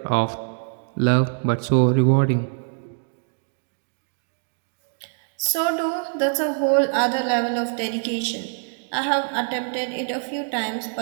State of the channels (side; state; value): left; silent; 61 dB below the other